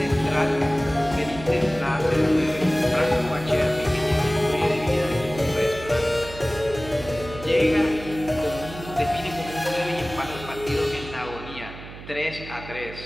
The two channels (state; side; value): noise; right; hum, 14 dB below the sound